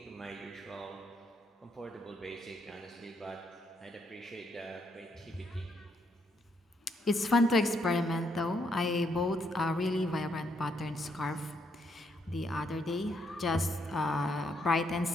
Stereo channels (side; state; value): both; normal; correlation 0.75